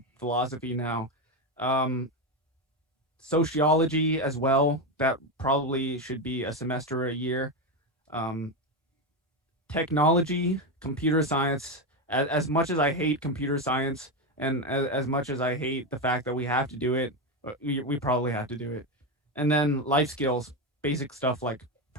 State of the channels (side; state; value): both; normal; correlation 0.12